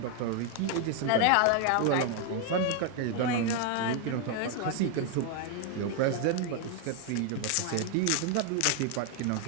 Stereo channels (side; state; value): both; different; correlation 0.00